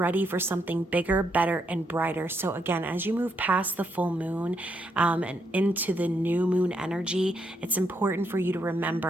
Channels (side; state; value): both; normal; correlation 0.77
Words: for something bigger, better, and brighter. So again, as you move past the full moon and into the new moon energy, it's important for you to